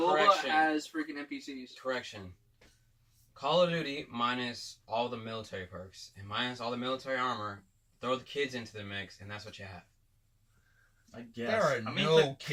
Correction. has freaking NPCs. Correction. Call of Duty minus all the military perks and minus all the military armor. Throw the kids into the mix, and that's what you have. I guess. There are I mean, no the kids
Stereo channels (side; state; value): both; identical; correlation 1.00